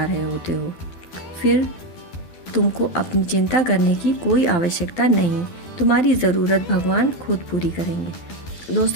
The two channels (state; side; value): late; right; 12 ms